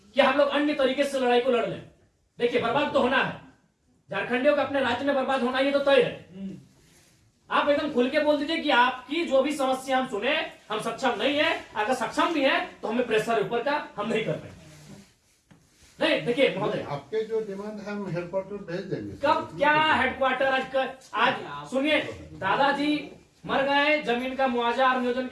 कि हम लोग अन्य तरीके से लड़ाई को लड़ लें। देखिए, बर्बाद तो होना है, झारखंडियों का अपने राज्य में बर्बाद होना ये तो तय है। आप एकदम खुल के बोल दीजिए कि आपकी जो भी समस्या हम सुने, हम सक्षम नहीं है। अगर सक्षम भी है तो हमें प्रेशर ऊपर का हम नहीं कर पाएंगे। नहीं, देखिए महोदय, आपके जो डिमांड है हम हेडक्वार्टर भेज देंगे। कब क्या हेडक्वार्टर? आज सुनिए, दादाजी मर गए, जमीन का मुआवजा और नियोजन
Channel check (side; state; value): both; identical; correlation 1.00